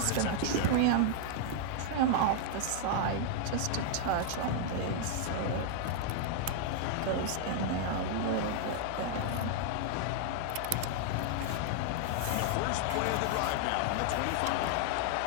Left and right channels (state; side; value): different; both; correlation 0.00